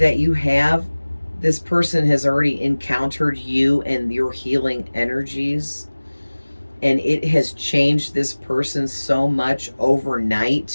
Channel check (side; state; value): both; inverted; correlation -1.00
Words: you have, this person has already encountered you and your healing energies, and it has changed this person so much